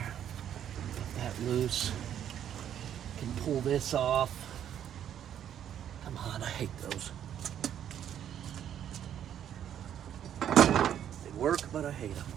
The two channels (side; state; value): left; quieter; 9.9 dB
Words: Get that loose. Can pull this off. Come on, I hate those. They work, but I hate them.